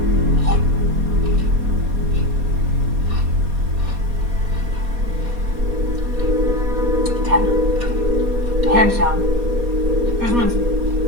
Hands down. This one's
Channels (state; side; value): late; left; 4.2 ms